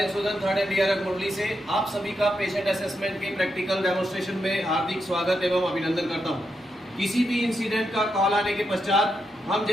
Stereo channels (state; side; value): normal; both; correlation 0.83